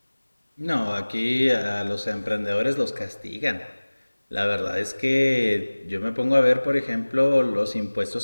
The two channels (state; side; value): inverted; both; correlation -1.00